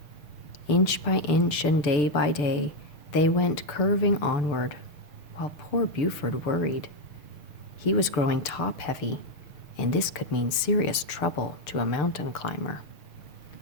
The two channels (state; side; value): late; right; 6.8 ms